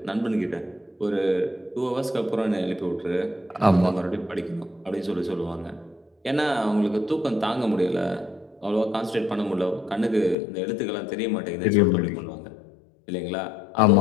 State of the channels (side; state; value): right; drops out; at 10.4 s